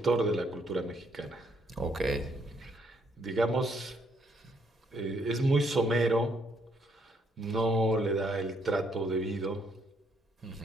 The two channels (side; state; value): both; normal; correlation 0.70